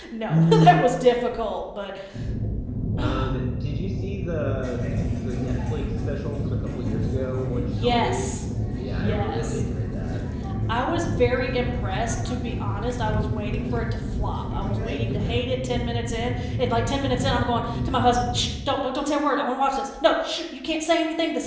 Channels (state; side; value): identical; both; correlation 1.00